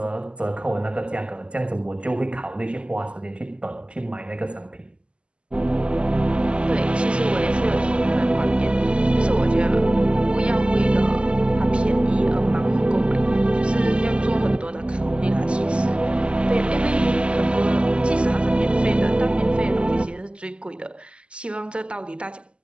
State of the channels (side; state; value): left; late; 0.054 ms